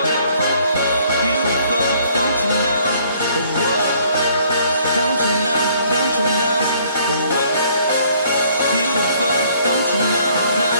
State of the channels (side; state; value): both; inverted; correlation -0.62